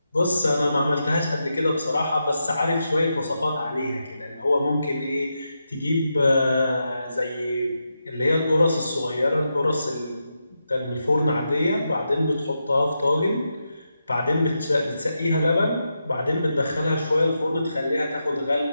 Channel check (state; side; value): inverted; both; correlation -0.87